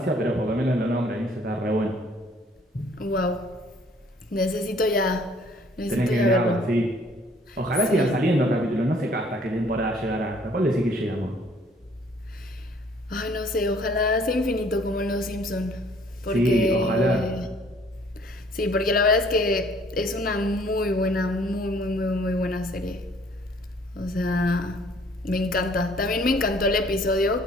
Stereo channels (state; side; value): normal; both; correlation 0.58